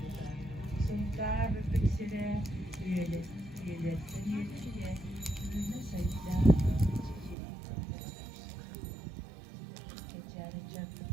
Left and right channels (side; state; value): left; drops out; at 7.4 s